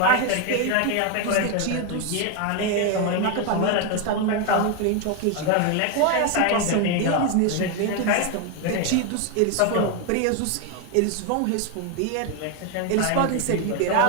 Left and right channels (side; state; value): both; different; correlation 0.01